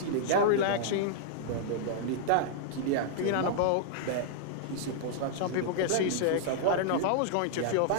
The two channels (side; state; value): both; different; correlation -0.01